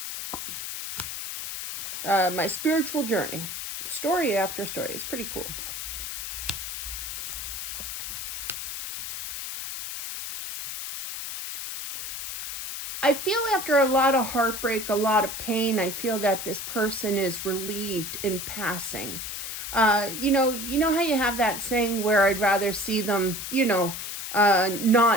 my spiritual journey. Story after story. It's pretty cool. I feel after a lot of heartbreak, a lot of pain, I feel that this person is relieved in passing. You know how you have that saying where I'd rather see them,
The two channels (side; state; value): left; noise; hiss, 6 dB below the sound